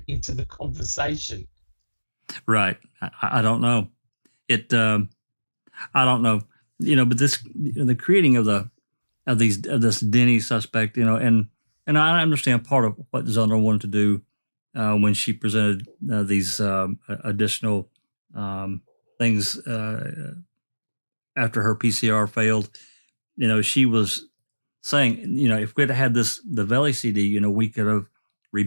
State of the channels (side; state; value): both; inverted; correlation -1.00